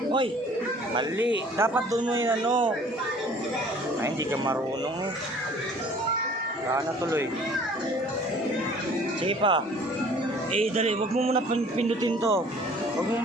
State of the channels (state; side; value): normal; both; correlation 0.52